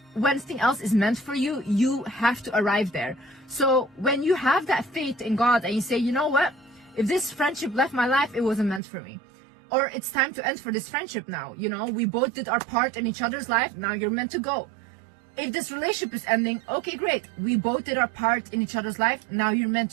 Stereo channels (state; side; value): drops out; left; at 8.8 s